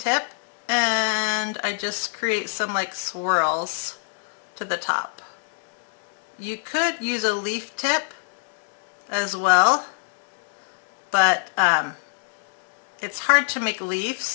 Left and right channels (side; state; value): right; silent; 62 dB below the other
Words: and I just create some like swirls to the top. You could use a leaf tip as well, but it's hard to make